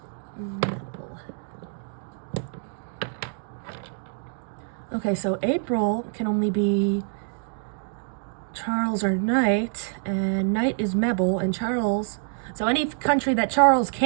Okay, so April can only be Charles or Knight, and Knight is Mebel, and Charles... so any country that Charles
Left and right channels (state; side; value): silent; left; digital silence